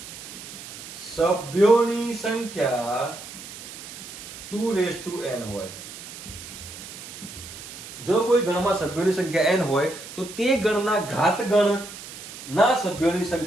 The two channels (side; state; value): right; noise; hiss, 13 dB below the sound